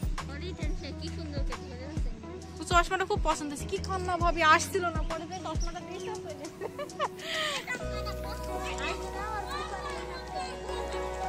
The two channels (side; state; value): both; identical; correlation 1.00